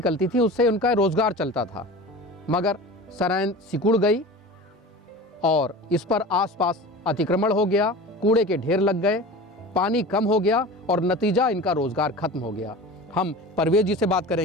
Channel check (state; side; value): normal; both; correlation 0.35